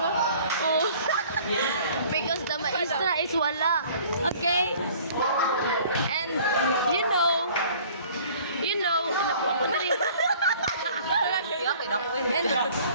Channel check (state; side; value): inverted; both; correlation -0.51